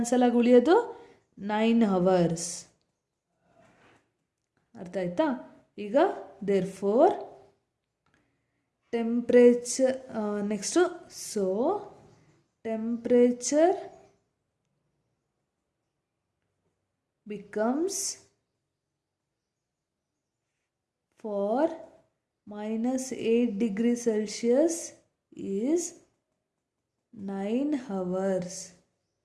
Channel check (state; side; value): identical; both; correlation 1.00